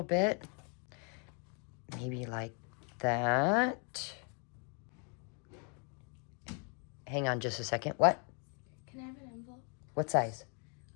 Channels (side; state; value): right; quieter; 37.5 dB